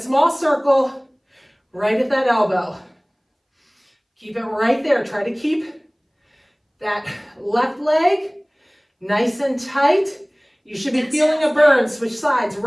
small circle right at that elbow. Keep it right there. Try to keep that left leg nice and tight. You should be feeling a burn. Switch sides.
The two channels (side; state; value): both; identical; correlation 1.00